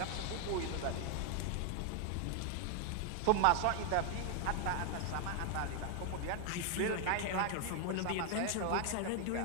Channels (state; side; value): different; both; correlation 0.00